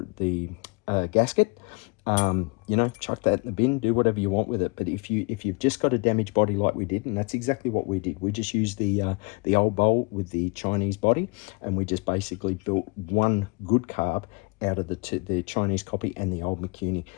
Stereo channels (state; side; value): quieter; right; 28.3 dB